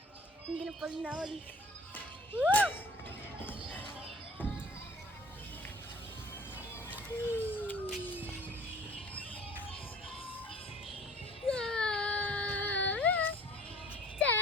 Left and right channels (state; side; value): normal; both; correlation 0.49